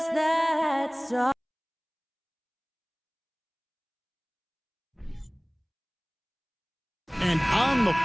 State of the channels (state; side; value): identical; both; correlation 1.00